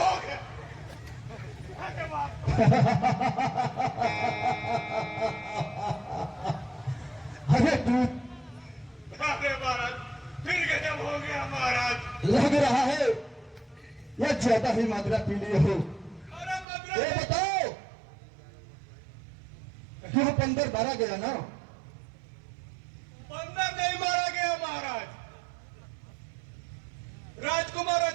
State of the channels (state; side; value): drops out; left; at 16.7 s